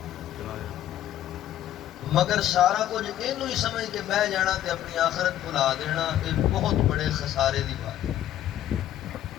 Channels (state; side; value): quieter; right; 12.1 dB